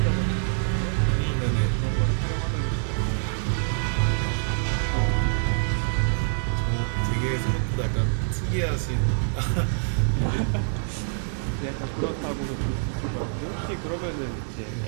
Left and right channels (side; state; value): left; silent; digital silence